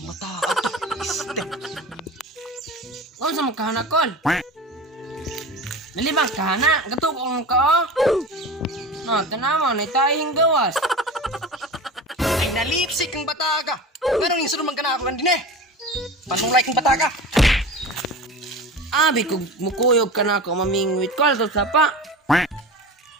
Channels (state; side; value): normal; both; correlation 0.32